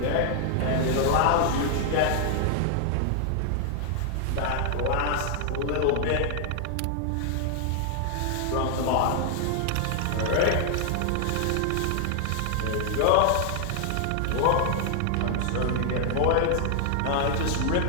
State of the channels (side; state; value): both; different; correlation 0.00